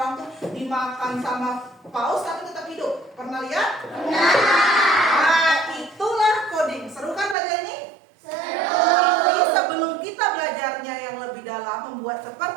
orang tuh dimakan sama paus tapi tetap hidup. Pernah lihat? Nah, itulah coding. Seru kan belajar ini? Tapi sebelum kita belajarnya yang lebih dalam, membuat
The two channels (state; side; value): drops out; left; at 7.4 s